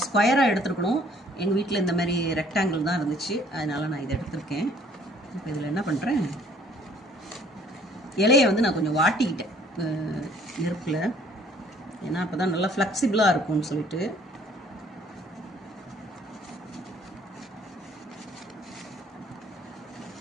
ஸ்கொயராக எடுத்துருக்கணும். எங்கள் வீட்டில் இந்த மாதிரி ரெக்டாங்கிள் தான் இருந்துச்சு, அதனால் நான் இதை எடுத்திருக்கேன். இப்போ இதில் என்ன பண்ணுறேன், இலையை வந்து நான் கொஞ்சம் வாட்டிக்கிட்டேன் நெருப்பில், ஏன்னா அப்போ தான் நல்லா ஃப்ளெக்சிபிளாக இருக்கும்னு சொல்லிட்டு.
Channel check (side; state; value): both; normal; correlation 0.59